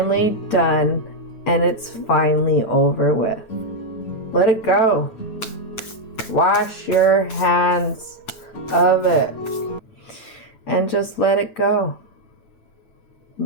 done and it's finally over with. Let it go. Wash your hands of it. And just let it go.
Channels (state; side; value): late; right; 9.1 ms